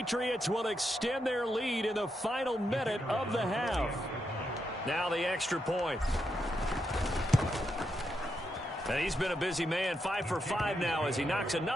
will extend their lead in the final minute of the half. Now the extra point. And he's been a busy man, 5 for 5 now as he knocks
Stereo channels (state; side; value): normal; both; correlation 0.83